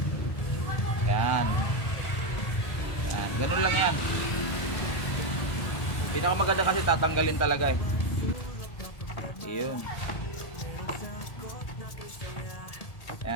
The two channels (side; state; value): right; late; 1.7 ms